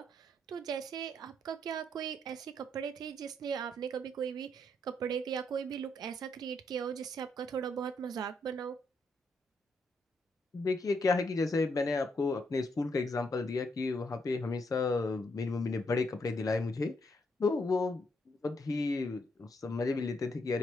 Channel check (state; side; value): normal; both; correlation 0.76